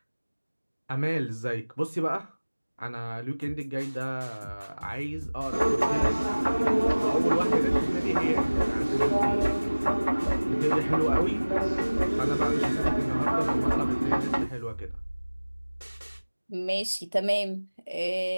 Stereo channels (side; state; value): both; inverted; correlation -1.00